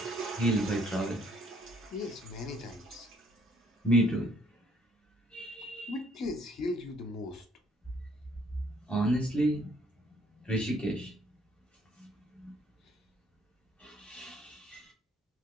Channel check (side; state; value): both; normal; correlation 0.64